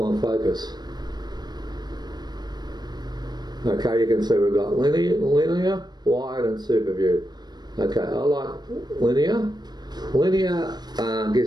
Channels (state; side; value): late; left; 0.20 ms